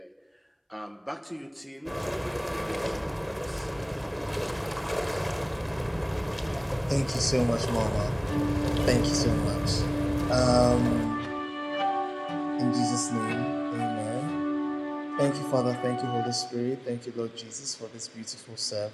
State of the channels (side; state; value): both; identical; correlation 1.00